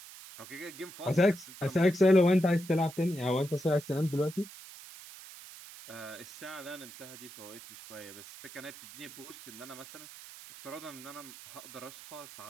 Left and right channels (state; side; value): noise; right; hiss, 16 dB below the sound